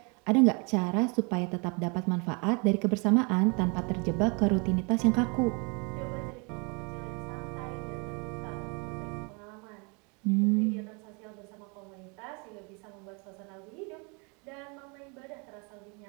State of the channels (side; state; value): left; quieter; 32.7 dB